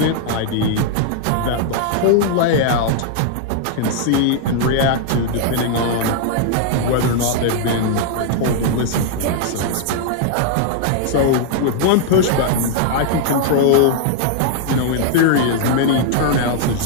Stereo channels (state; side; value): different; both; correlation 0.00